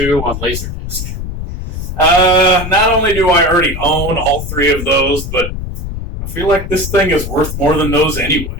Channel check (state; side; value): noise; left; rumble, 6 dB below the sound